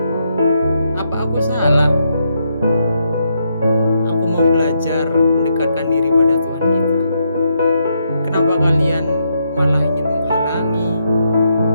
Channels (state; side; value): inverted; both; correlation -0.79